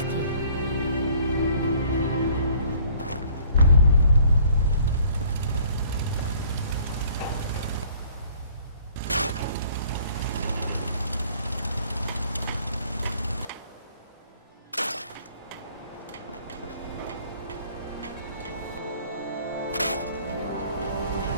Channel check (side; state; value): both; inverted; correlation -0.57